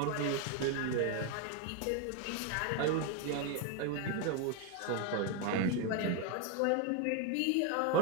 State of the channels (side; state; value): both; different; correlation 0.01